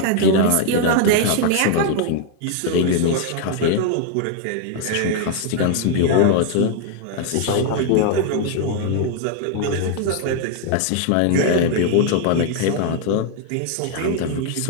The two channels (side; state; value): both; different; correlation 0.00